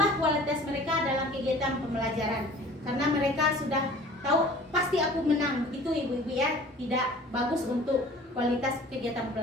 kualitas mereka dalam kegiatan pembelajaran, karena mereka sudah tahu pasti aku menang. Itu ibu-ibu ya, tidak bagus untuk kualitas kegiatan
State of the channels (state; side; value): normal; both; correlation 0.47